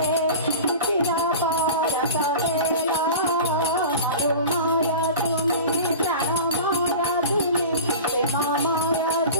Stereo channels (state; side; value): inverted; both; correlation -0.34